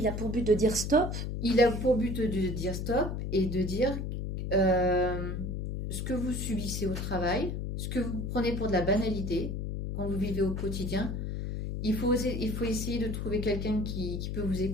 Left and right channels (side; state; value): left; noise; hum, 3 dB below the sound